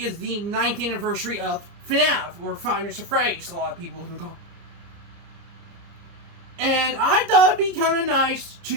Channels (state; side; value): late; left; 30 ms